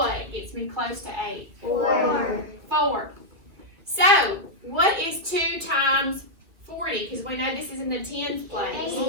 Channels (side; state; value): left; late; 2.6 ms